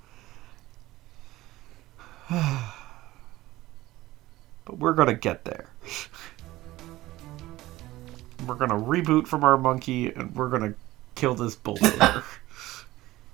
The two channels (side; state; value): left; quieter; 17.2 dB